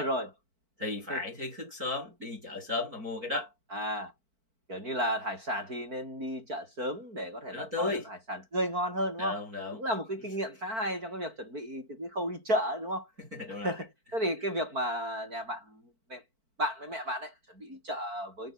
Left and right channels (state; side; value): late; left; 4.5 ms